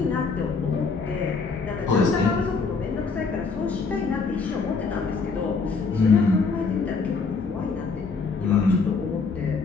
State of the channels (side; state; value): right; quieter; 4.6 dB